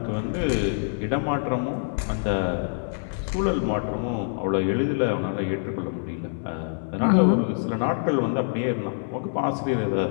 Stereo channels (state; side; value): silent; right; digital silence